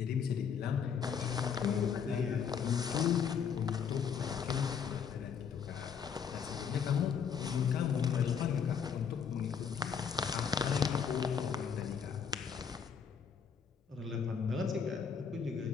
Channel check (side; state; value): right; quieter; 6.9 dB